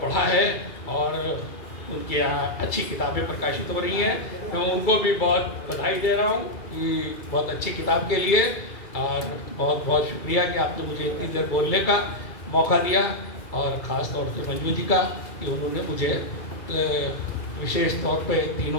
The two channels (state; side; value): late; right; 2.3 ms